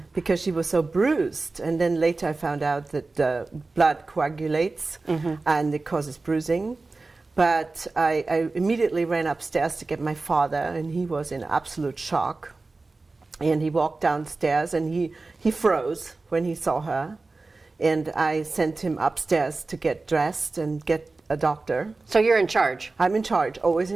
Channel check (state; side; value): quieter; left; 3.6 dB